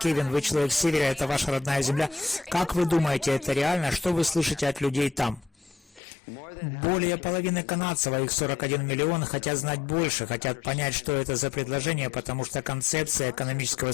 вы человек с севера, это ваша родная земля. Как вы думаете, это реально? Что вы слышите от людей там? Более половины канадцев, а их 41 миллион, хотят знать больше, хотят понять, что это за предложение, потому что концепция экономического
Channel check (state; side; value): drops out; right; at 6.0 s